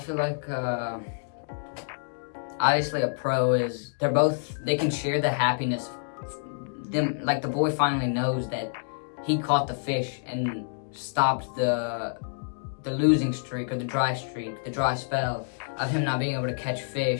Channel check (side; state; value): right; silent; digital silence